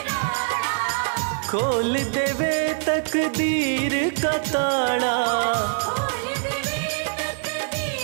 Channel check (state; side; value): silent; left; digital silence